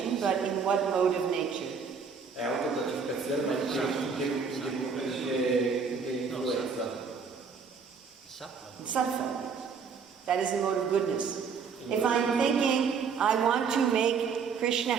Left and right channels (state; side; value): quieter; left; 5.8 dB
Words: but in what mode of nature? È autogratificazione, ma in che influenza? Sattva. That is the mode of goodness. If I'm thinking, I want to make Krishna